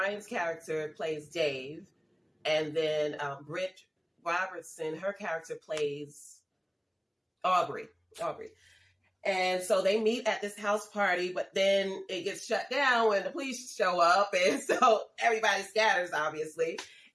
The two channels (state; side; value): identical; both; correlation 1.00